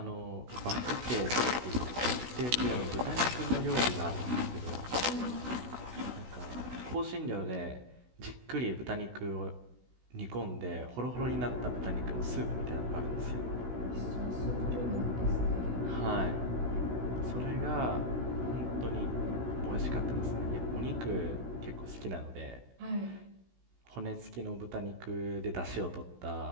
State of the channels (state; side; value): late; left; 16 ms